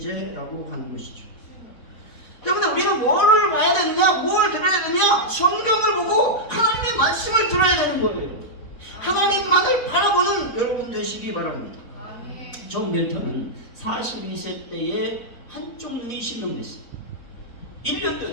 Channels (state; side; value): late; right; 4.1 ms